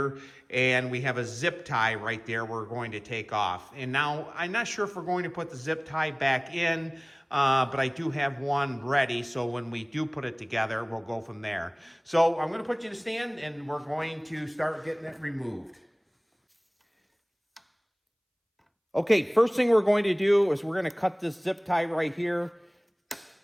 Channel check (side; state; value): both; identical; correlation 1.00